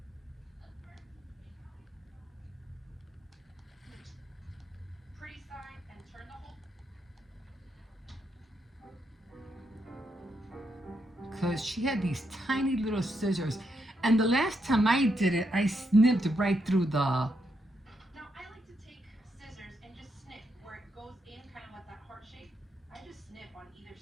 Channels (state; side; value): normal; both; correlation 0.80